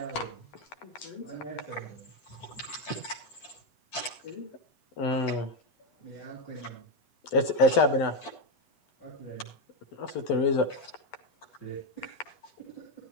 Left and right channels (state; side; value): late; right; 8.0 ms